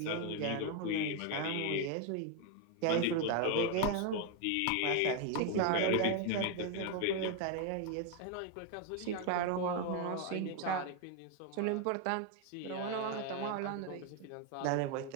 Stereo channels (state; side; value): different; both; correlation 0.01